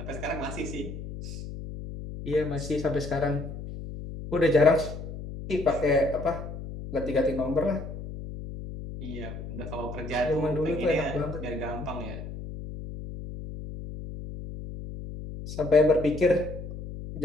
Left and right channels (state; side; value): noise; left; hum, 9 dB below the sound